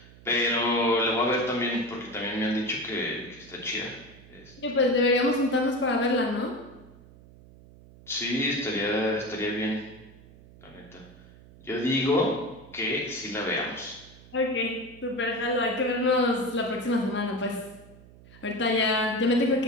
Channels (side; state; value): right; noise; hum, 22 dB below the sound